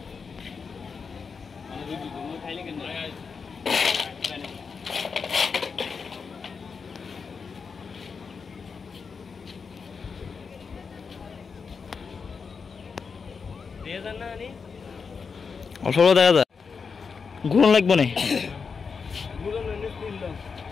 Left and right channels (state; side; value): quieter; right; 5.4 dB